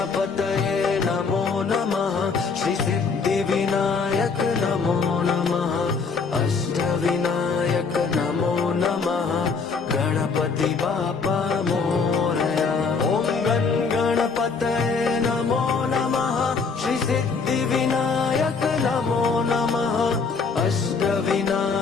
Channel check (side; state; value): right; quieter; 4.9 dB